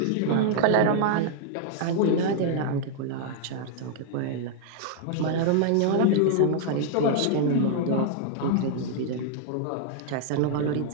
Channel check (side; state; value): both; different; correlation -0.01